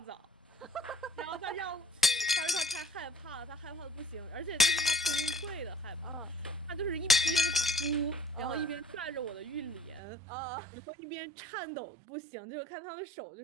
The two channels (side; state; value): left; drops out; at 10.0 s